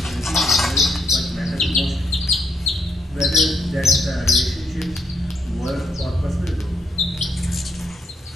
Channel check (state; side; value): normal; both; correlation 0.73